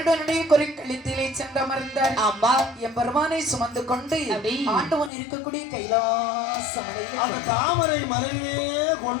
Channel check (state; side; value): drops out; right; at 5.1 s